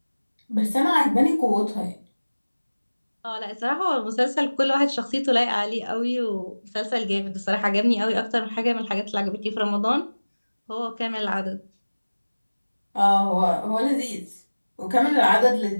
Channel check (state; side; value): inverted; both; correlation -1.00